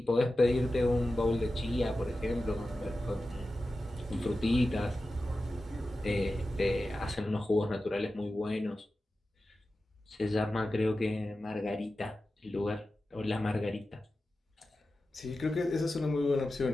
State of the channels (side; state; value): both; normal; correlation 0.93